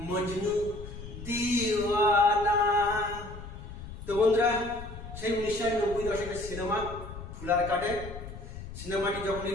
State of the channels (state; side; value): noise; left; rumble, 12 dB below the sound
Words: मजनू दीवाना। তো বন্ধুরা, সেই 1990 দশকের সিনেমা ফুলার কাটে। সিনেমাটি যখন